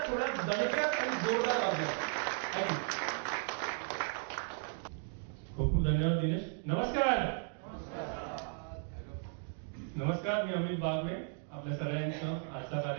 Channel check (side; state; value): left; silent; 54 dB below the other